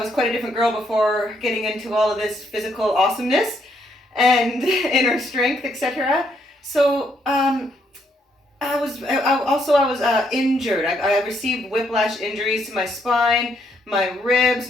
quite a different girl before getting into all of this physical awesomeness and inner strength, etc. So I was injured. I received whiplash injuries to my spine, my ribs,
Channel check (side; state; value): both; normal; correlation 0.73